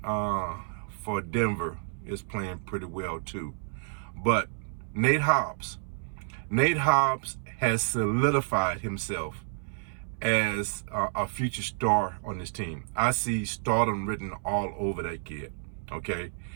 for Denver is playing pretty well too. But Nate Hobbs has solidified himself as a future star on this team. I see stardom written all over that kid. Okay,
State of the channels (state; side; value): silent; left; 58 dB below the other